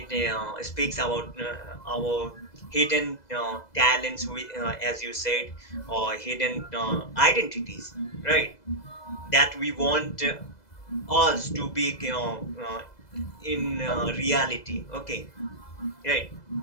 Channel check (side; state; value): right; late; 2.0 ms